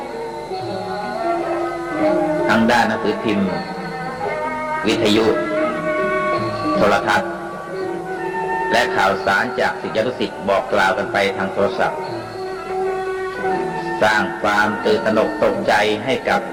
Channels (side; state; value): both; identical; correlation 1.00